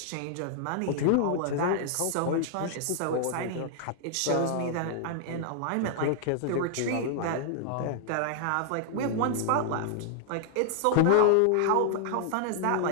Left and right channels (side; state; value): both; different; correlation -0.01